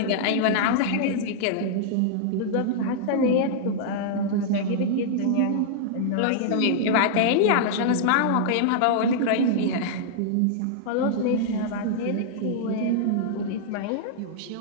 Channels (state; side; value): different; both; correlation -0.01